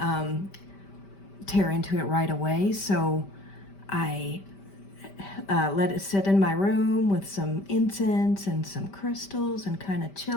tear into it right away. So I let it sit in my room with some incense and some crystals and kind of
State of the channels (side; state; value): right; late; 5.1 ms